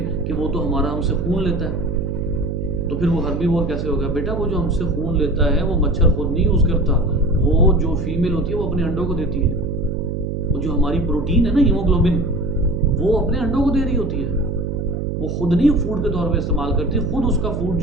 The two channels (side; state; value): right; noise; hum, 3 dB below the sound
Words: कि वो तो हमारा हमसे खून लेता है, तो फिर वो हर्बीवोर कैसे हो गया? बेटा वो जो हमसे खून लेता है वो मच्छर खुद नहीं यूज़ करता, वो जो फीमेल होती है वो अपने अंडों को देती है। वो जो हमारी प्रोटीन है ना, हीमोग्लोबिन, वो अपने अंडों को दे रही होती है, वो खुद नहीं फूड के तौर पे इस्तेमाल करती। खुद उसका फूड